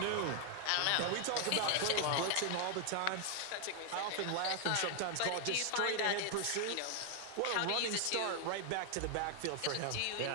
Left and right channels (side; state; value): both; different; correlation 0.00